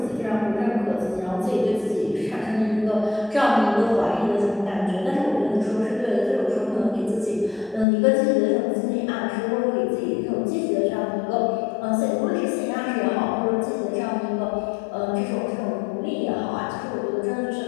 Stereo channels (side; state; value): right; drops out; at 7.9 s